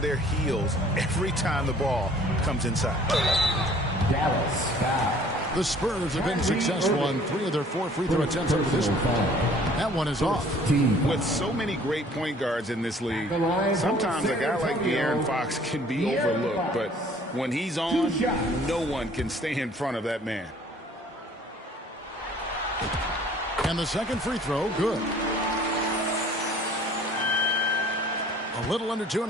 their heels every time the ball comes inside. The Spurs have been successful on 3 of their 4 free throw attempts up to this one. That one is off. With so many great point guards in this league, sometimes a guy like De'Aaron Fox can be overlooked. But when he's on, no one can stay in front of that man. And the second free throw, good. A little under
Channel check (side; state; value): both; normal; correlation 0.54